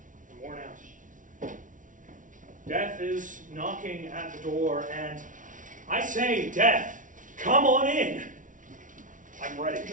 I'm worn out. Death is knocking at the door, and I say, Death, come on in. I'm ready.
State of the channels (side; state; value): left; late; 0.38 ms